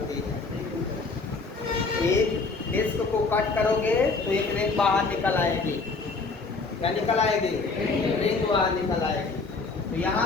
है। एक डिस्क को कट करोगे तो एक रिंग बाहर निकल आएगी, क्या निकल आएगी, रिंग बाहर निकल आएगी। तो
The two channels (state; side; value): quieter; right; 4.0 dB